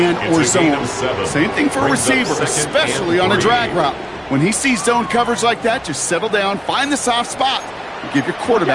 or zone. Same thing for a receiver, especially on a drag route. When he sees zone coverage like that, just settle down, find the soft spot, and give your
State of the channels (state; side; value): identical; both; correlation 1.00